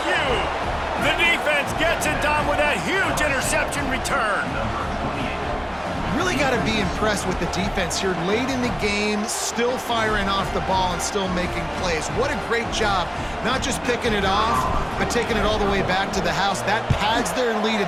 The defense gets it done with that huge interception return. Really got to be impressed with the defense here late in the game, still firing off the ball and still making plays. What a great job, not just picking it off, but taking it all the way back to the house. That pads their lead,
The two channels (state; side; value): identical; both; correlation 1.00